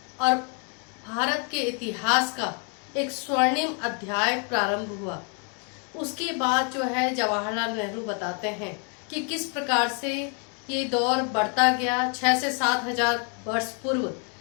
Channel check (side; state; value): right; quieter; 38.3 dB